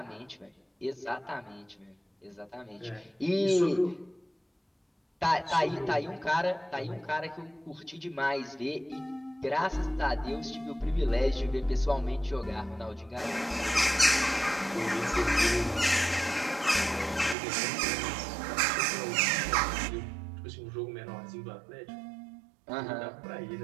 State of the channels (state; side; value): drops out; left; at 17.4 s